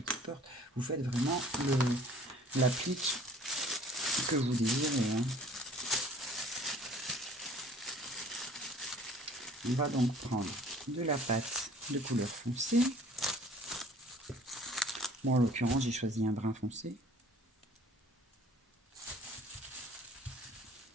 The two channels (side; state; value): both; normal; correlation 0.52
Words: porte. Vous faites vraiment l'applique que vous désirez. Hein. On va donc prendre de la pâte de couleur foncée. Bon, en l'occurrence, j'ai choisi un brun foncé.